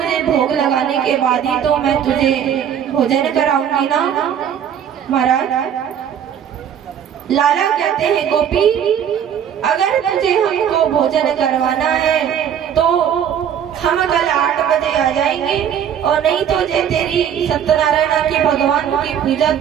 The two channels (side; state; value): left; quieter; 8.9 dB